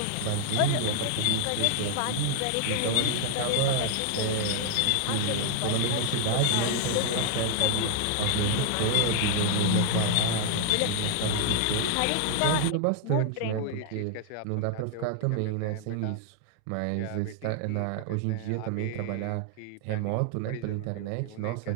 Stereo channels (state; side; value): different; both; correlation 0.00